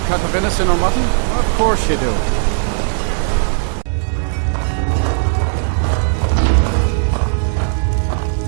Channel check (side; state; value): left; silent; digital silence